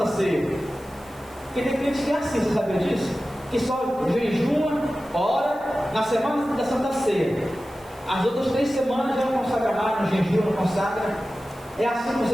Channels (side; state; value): right; noise; hiss, 27 dB below the sound